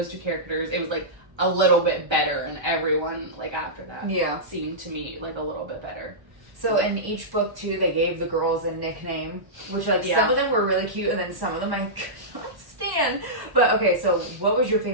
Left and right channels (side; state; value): left; late; 1.1 ms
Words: two characters, it was like a little bit better, and everyone like after that seemed to me like a little bit better. So in each book too, they gave the girls a nickname, which like some of them were really cute, and then some of them I could not stand. But okay, so what was your